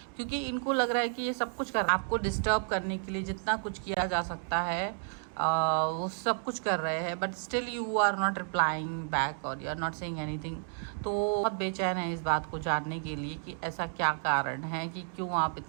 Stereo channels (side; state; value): left; silent; 57 dB below the other